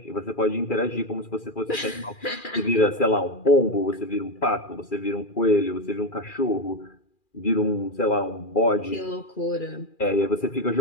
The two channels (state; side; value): late; right; 2.4 ms